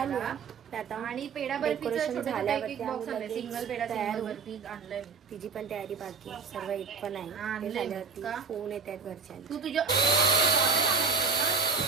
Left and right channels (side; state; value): left; quieter; 5.2 dB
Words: आहे आता. आणि पेढा डेकोरेशन झाल्यावरती सिंगल पेढा आणलाय, तिची पण तयारी बाकी सर्व एक पण आहे. ते झाल्यावरती फोन येत आहेत घरच्या. तू तुझ्या